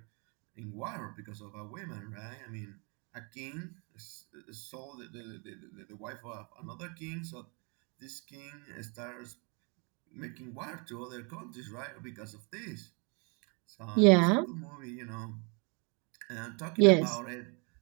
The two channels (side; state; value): left; quieter; 33.8 dB